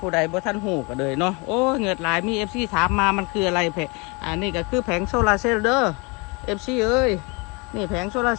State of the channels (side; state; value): right; quieter; 29.2 dB